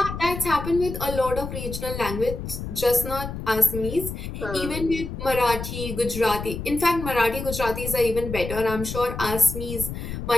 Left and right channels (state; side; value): noise; left; rumble, 7 dB below the sound